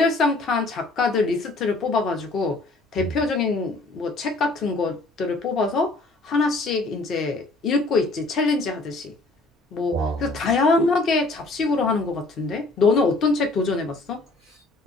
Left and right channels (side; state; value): right; quieter; 3.1 dB